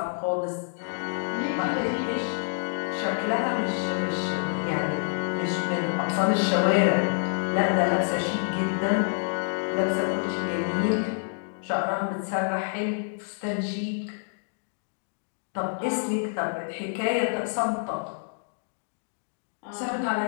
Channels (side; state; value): right; silent; digital silence